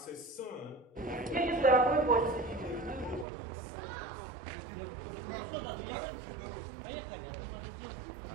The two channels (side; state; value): left; drops out; at 3.2 s